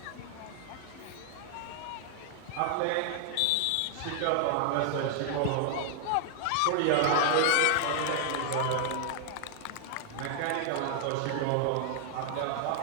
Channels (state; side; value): different; both; correlation 0.00